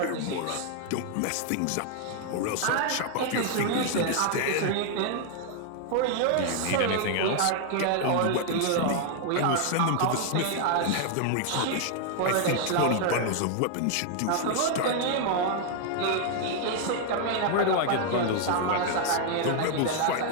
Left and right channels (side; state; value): both; different; correlation 0.00